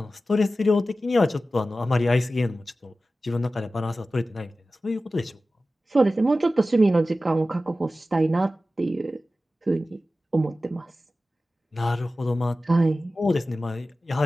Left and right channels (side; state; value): both; normal; correlation 0.95